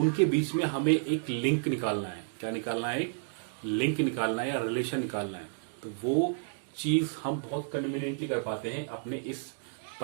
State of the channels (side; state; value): left; silent; digital silence